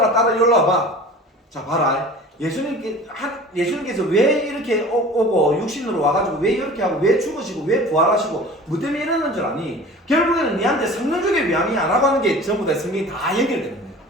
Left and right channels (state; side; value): normal; both; correlation 0.41